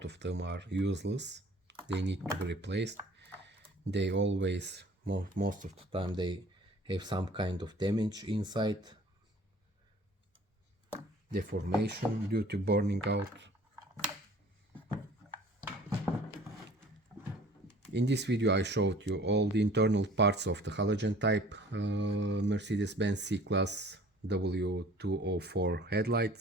of them are useless. They need to be replaced. They always, most of the time, they have some kind of damage inside, deformation due to burning out. In this video I showed you all the internal parts of the halogen type Mercedes-Benz C-Class W204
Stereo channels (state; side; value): normal; both; correlation 0.50